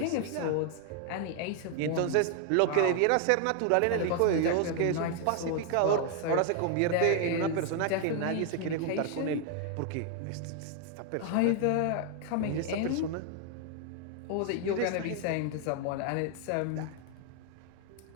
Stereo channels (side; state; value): both; different; correlation 0.00